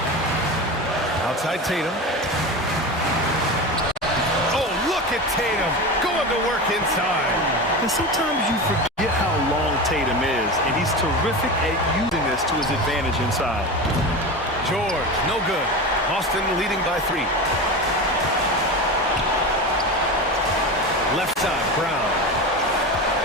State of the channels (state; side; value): normal; both; correlation 0.25